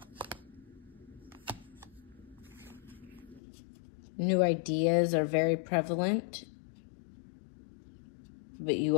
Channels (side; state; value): right; drops out; at 3.4 s